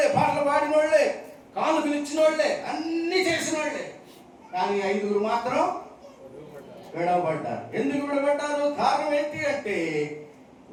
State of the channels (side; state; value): both; identical; correlation 1.00